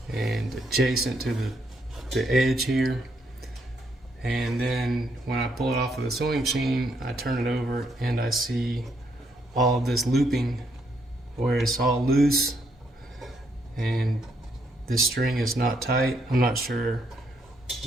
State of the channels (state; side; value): normal; both; correlation 0.75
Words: and adjacent to the edge here. And then when I pull it off of the sewing machine, I turn it over and I see all of this looping where it's all loose and this string is not tight. I'm not sure